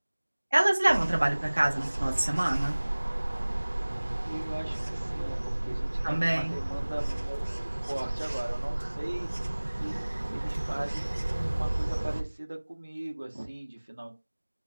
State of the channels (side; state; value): both; inverted; correlation -1.00